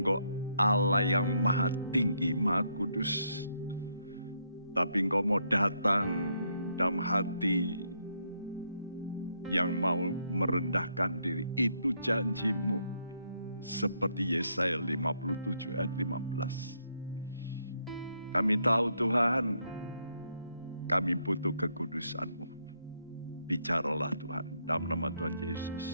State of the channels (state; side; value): inverted; both; correlation -0.75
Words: Allah yang maha tinggi, maha kudus, tapi Engkau mau datang dalam hati yang mau merendahkan diri. Itu janji-Mu. Seperti Yesaya 57 ayat 15. Kami tahu Tuhan, kami butuh kekudusan-Mu. Bicaralah Tuhan, dalam nama Tuhan